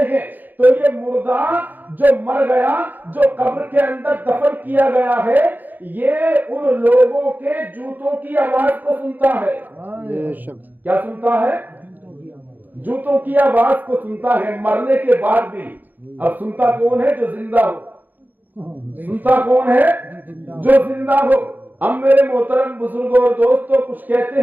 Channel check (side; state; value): left; late; 0.085 ms